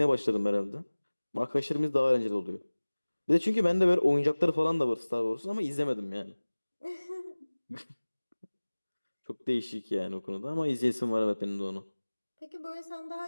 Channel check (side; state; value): both; inverted; correlation -1.00